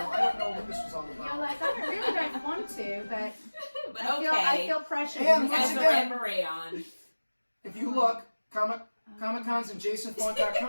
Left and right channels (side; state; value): both; inverted; correlation -1.00